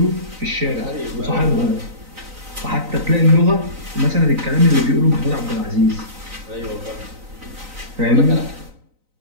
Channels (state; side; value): late; left; 3.9 ms